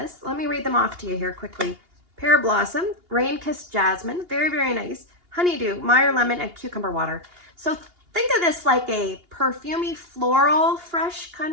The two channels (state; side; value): late; left; 2.8 ms